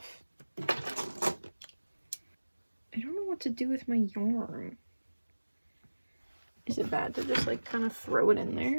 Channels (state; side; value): inverted; both; correlation -1.00